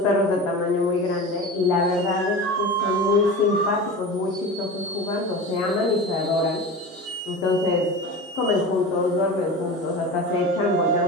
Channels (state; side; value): normal; both; correlation 0.30